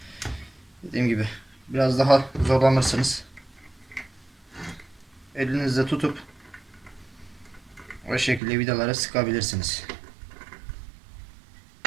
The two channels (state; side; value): drops out; left; at 8.4 s